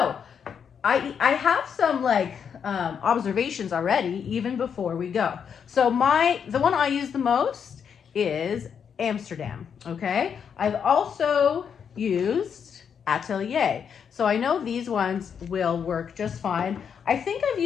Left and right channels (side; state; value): right; quieter; 7.3 dB